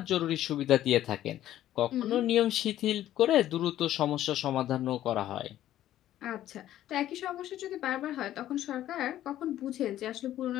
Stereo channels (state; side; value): quieter; right; 12.8 dB